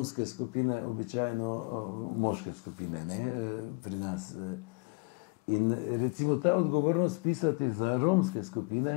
skupine običajno moške skupine, ne, pri nas. In recimo ta odgovornost pisati za romske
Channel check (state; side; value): quieter; right; 31.6 dB